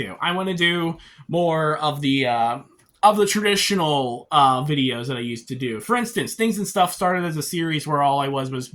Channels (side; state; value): both; identical; correlation 1.00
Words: I want to do more of the traditional videos that I used to do. For instance, Things and Stuff started as a series where all I was